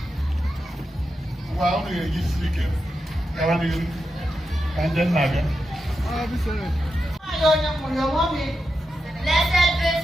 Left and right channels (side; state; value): both; normal; correlation 0.89